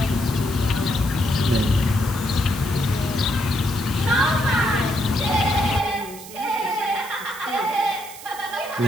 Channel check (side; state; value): right; noise; hiss, 15 dB below the sound